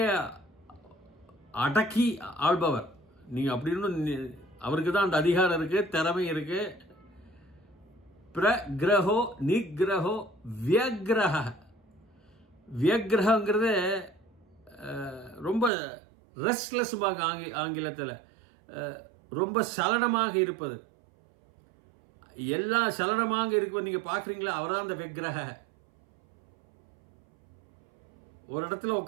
அடக்கி ஆள்பவர். நீங்க அப்படின்னு அவருக்கு தான் அந்த அதிகாரம் இருக்கு, திறமை இருக்கு. பிரக்ரஹோ நிகிரஹோ வியக்ரஹ. வியக்ரஹங்கிறது ரொம்ப ரெஸ்ட்லெஸ் ஆங்கிலத்தில், ரொம்ப சலனமாக இருப்பது. எல்லா சலனமாக இருப்பது நீங்க பாக்குறீங்களா? அவர்தான் அந்த விக்கிரக. ஒரு இடத்துல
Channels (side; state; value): left; drops out; at 15.7 s